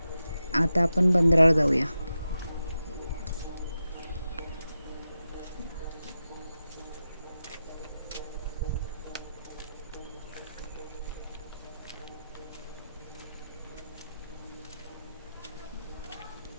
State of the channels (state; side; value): inverted; both; correlation -0.90